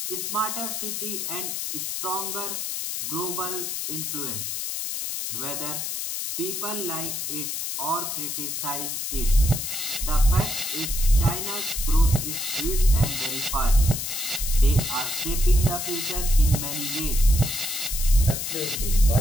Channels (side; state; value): left; noise; hiss, 3 dB below the sound